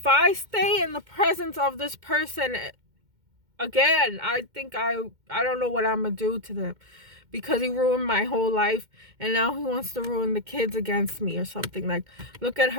I stay in the presence of this person again, I think I don't know what I'm going to do to them. Because he ruined my whole life. And now he wants to ruin the kids against me or something. Like, look at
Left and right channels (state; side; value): late; left; 2.1 ms